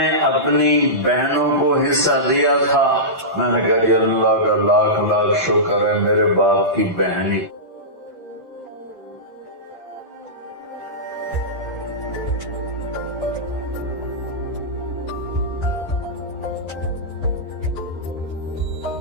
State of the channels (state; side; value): normal; both; correlation -0.16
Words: اپنی بہنوں کو حصہ دیا تھا؟ میں نے کہا اللہ کا لاکھ لاکھ شکر ہے میرے باپ کی بہنی